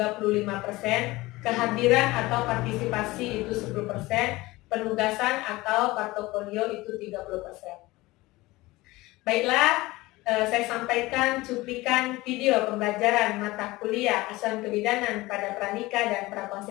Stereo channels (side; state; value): right; quieter; 20.0 dB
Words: kehadiran atau partisipasi itu 10%, penugasan atau portofolio itu 30%. Baiklah, saya sampaikan cuplikan video pembelajaran mata kuliah asuhan kebidanan pada pranikah dan